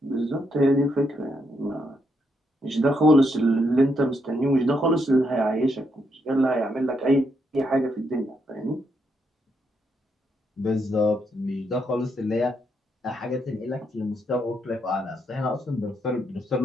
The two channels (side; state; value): both; normal; correlation 0.78